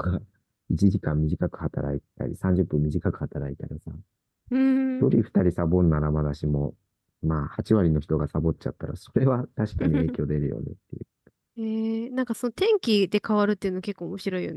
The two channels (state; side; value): identical; both; correlation 1.00